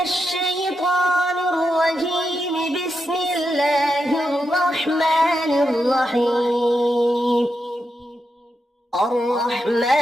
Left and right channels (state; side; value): normal; both; correlation 0.85